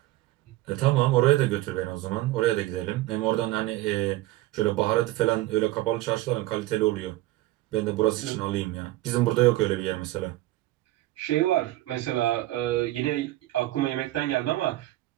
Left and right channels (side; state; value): left; quieter; 16.9 dB